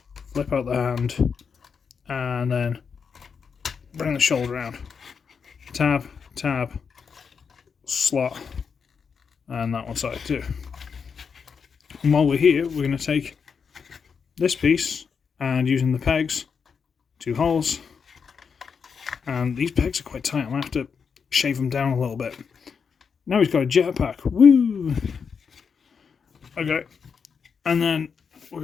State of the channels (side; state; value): right; quieter; 6.1 dB